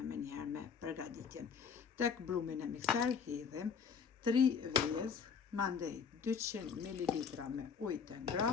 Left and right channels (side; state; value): right; quieter; 6.3 dB